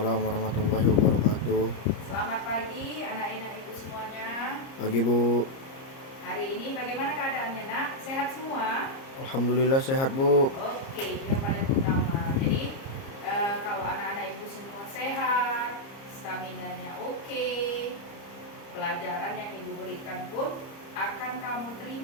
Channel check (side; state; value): right; late; 30 ms